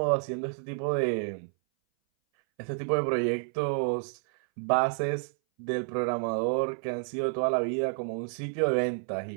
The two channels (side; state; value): left; silent; 58 dB below the other